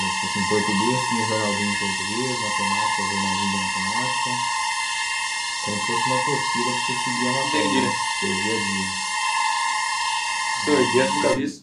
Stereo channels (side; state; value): both; identical; correlation 1.00